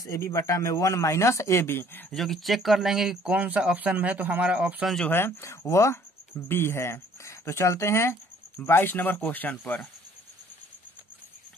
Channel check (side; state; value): both; normal; correlation 0.58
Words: ए बी बटा में 1 माइनस ए बी, जो कि चेक कर लेंगे कि कौन सा ऑप्शन में है। तो हमारा ऑप्शन जो है वह बी है। तो चलते हैं 22 नंबर क्वेश्चन पर।